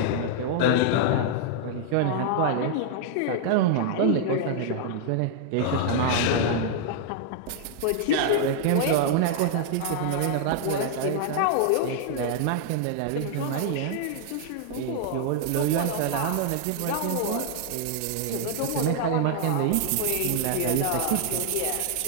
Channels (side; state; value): both; different; correlation -0.01